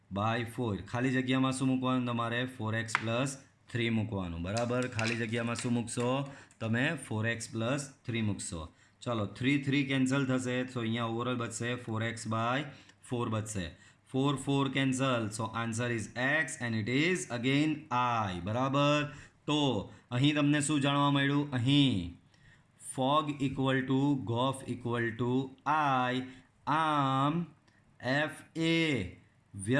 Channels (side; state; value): both; identical; correlation 1.00